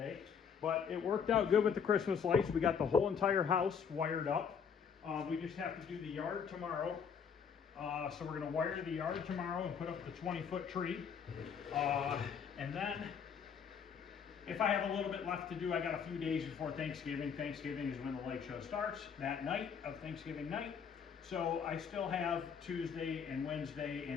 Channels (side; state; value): right; quieter; 6.8 dB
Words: But it worked out good with the Christmas lights. We got the whole entire house wired up. We just have to do the yard tomorrow. So we're gonna wire the yard tomorrow and put up the 20-foot tree. And then, if I have a little bit left to do, I got a few days before Thanksgiving. Thanksgiving is when the light show starts, that night of Thanksgiving night. So I still have Tuesday and Wednesday